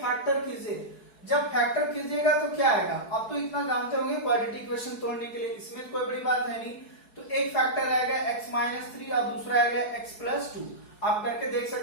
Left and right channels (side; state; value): right; late; 4.7 ms